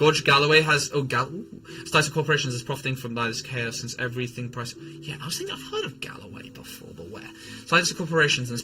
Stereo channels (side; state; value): both; identical; correlation 1.00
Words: Galloway has... Started corporations is profiting from this chaos since everything price... Yeah, I was thinking I've heard of Galloway before, but where? Started corporations and is